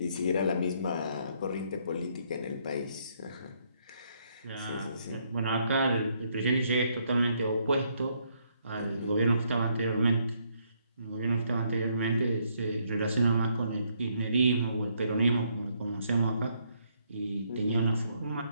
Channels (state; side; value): inverted; both; correlation -0.72